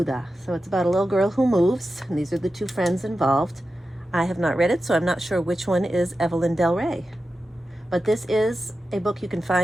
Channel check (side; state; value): both; normal; correlation 0.92